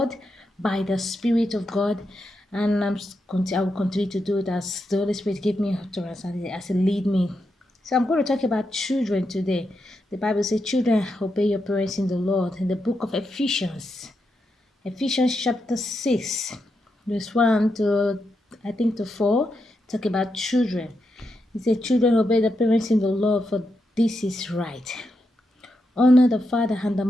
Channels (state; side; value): normal; both; correlation 0.84